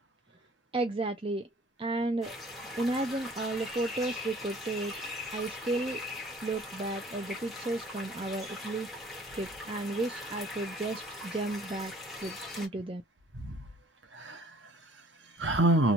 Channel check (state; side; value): normal; both; correlation 0.54